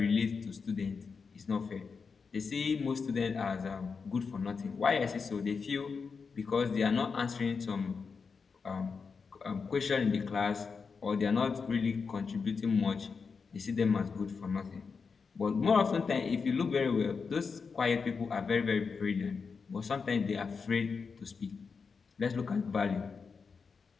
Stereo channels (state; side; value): quieter; right; 5.3 dB